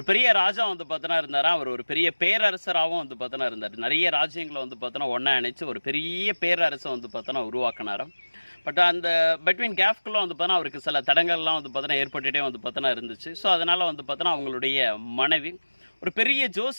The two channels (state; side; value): inverted; both; correlation -1.00